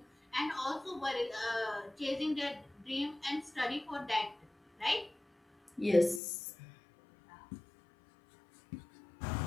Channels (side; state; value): right; drops out; at 6.2 s